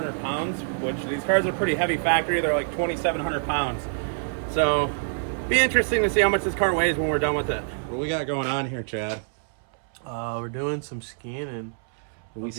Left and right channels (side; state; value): left; silent; 61 dB below the other